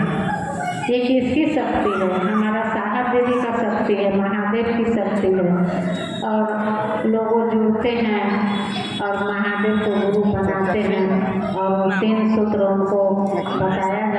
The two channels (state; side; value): identical; both; correlation 1.00